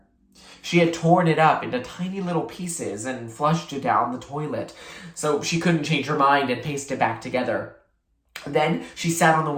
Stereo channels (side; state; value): both; identical; correlation 1.00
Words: She had torn it up into tiny little pieces and flushed it down the toilet, so she couldn't change her mind and paste it back together. Then she sat on the